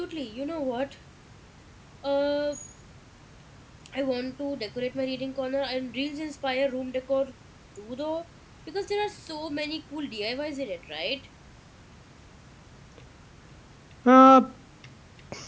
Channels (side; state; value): both; identical; correlation 1.00